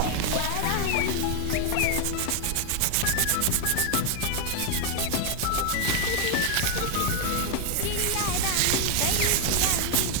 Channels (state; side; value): different; both; correlation 0.00